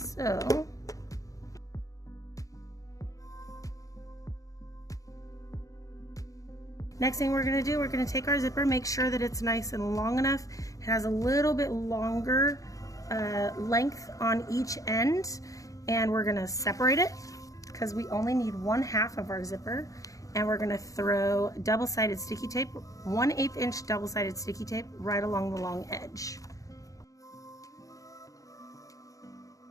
next thing we're gonna do, we're gonna take our zipper, make sure that it's nice and long enough. It has a little bit longer length on each end, and we're gonna separate it because we only need 1/2 of our zipper, and we're gonna throw double-sided sticky tape, 1/8 inch double-sided sticky tape right along the long edge.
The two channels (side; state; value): right; late; 0.16 ms